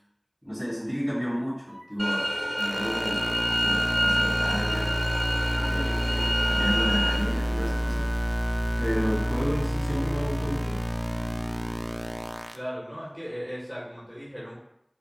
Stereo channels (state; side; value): identical; both; correlation 1.00